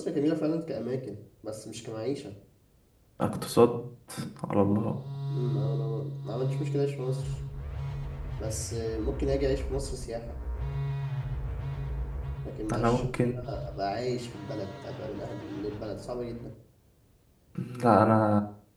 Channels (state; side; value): identical; both; correlation 1.00